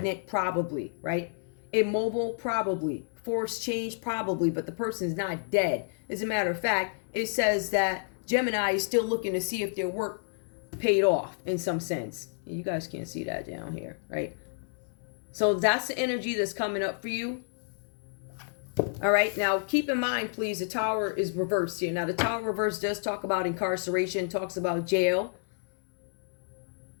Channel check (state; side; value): silent; right; 58 dB below the other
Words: probably, right? Immobile, probably. Force change, probably, but the person's not dead. As a matter of fact, it says that Gemini is still looking to see if their work paid off in some sense. You guys can't see that down here, right? So that's the energy that's coming up for you. All right, now keep in mind, please, the Tower is reversed here. Now, the Tower reverse does talk about incarceration, talks about jail.